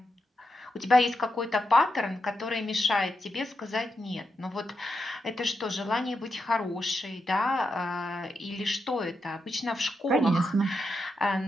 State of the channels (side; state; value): both; normal; correlation 0.85